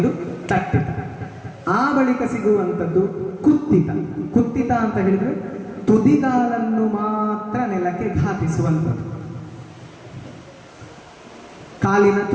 ತಟ್ಟಿತ. ಆ ಬಳಿಕ ಸಿಗುವಂಥದ್ದು ಕುತ್ತಿತ. ಕುತ್ತಿತ ಅಂತ ಹೇಳಿದ್ರೆ ತುದಿಗಾಲನ್ನು ಮಾತ್ರ ನೆಲಕ್ಕೆ ಘಾತಿಸುವಂಥದ್ದು. ಕಾಲಿನ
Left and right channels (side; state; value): both; identical; correlation 1.00